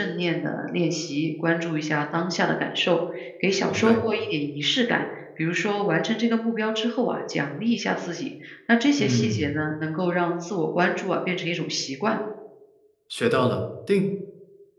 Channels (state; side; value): identical; both; correlation 1.00